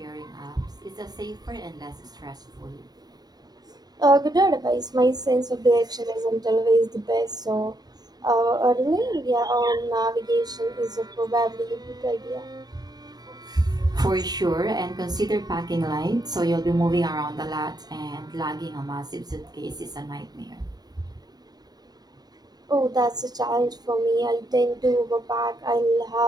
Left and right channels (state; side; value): late; left; 0.19 ms